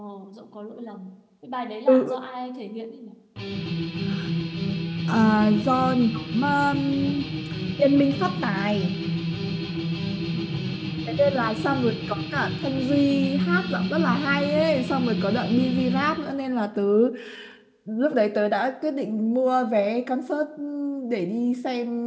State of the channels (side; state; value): both; identical; correlation 1.00